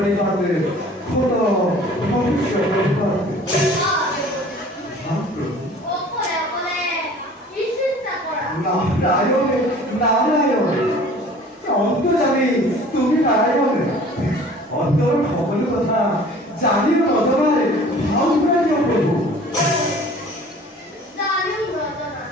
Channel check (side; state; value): both; normal; correlation 0.47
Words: খোদ ভৱিষ্য প্ৰণিপাত। নারায়ণ নারায়ণ অন্তর্যামী তুমি নারায়ণ, অন্তর সকল কথা জানিও নজনায় ভাও করে দিও প্রভু।